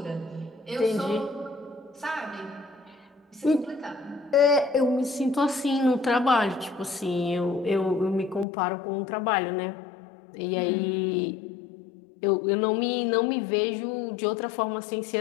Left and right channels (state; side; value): drops out; right; at 8.5 s